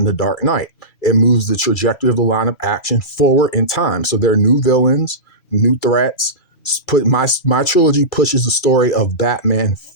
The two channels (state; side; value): late; right; 2.3 ms